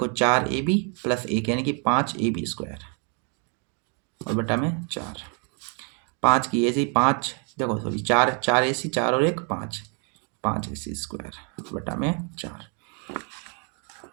4 ए बी प्लस 1 यानी कि 5 ए बी स्क्वायर, और बटा में 4, 5 की ए सी 5, देखो सॉरी 4 ए सी 4 और 1 5, 5 ए सी स्क्वायर बटा में 4।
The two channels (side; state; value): left; quieter; 38.6 dB